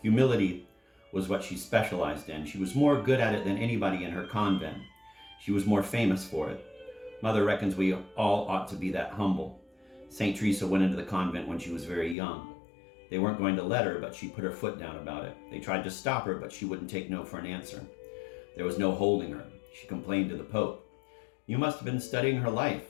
Humility was what she specialized in. She was more good at it than anybody in her convent. She was more famous for it. Mother reckons we all ought to be that humble. St. Teresa went into the convent when she was very young. They weren't going to let her, but she put her foot down about it. They tried to stop her, but she wouldn't take no for an answer. There was no holding her. She complained to the Pope. You must have been studying her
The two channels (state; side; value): drops out; right; at 12.2 s